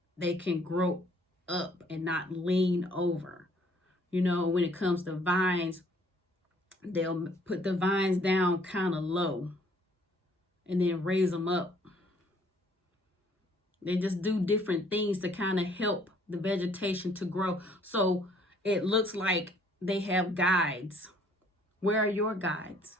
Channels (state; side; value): normal; both; correlation 0.61